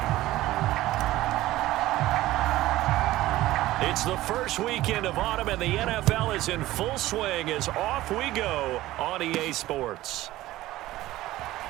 It's the first weekend of autumn, and the NFL is in full swing as off we go on EA Sports.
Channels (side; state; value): left; quieter; 16.3 dB